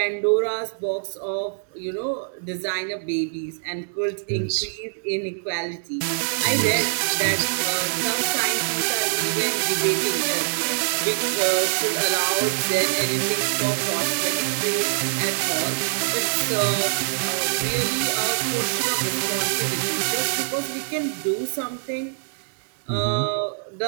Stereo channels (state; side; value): silent; left; digital silence